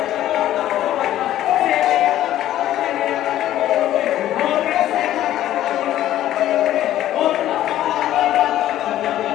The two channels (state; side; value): quieter; right; 13.0 dB